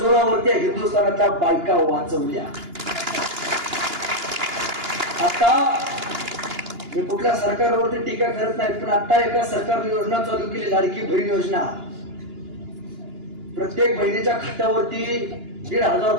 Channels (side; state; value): left; late; 2.9 ms